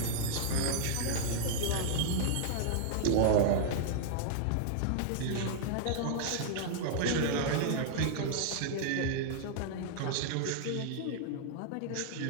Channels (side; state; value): both; different; correlation -0.01